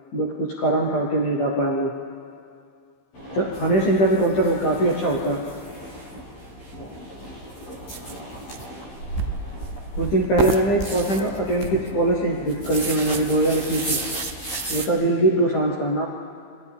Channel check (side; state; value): right; late; 15 ms